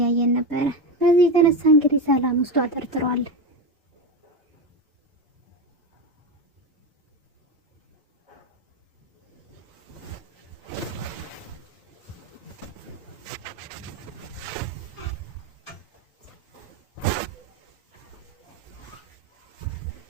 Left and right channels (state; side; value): normal; both; correlation 0.16